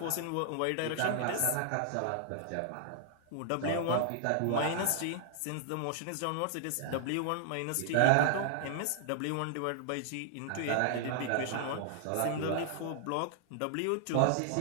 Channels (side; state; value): both; different; correlation 0.00